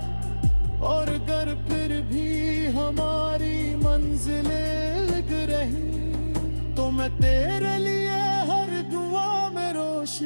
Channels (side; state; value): both; inverted; correlation -1.00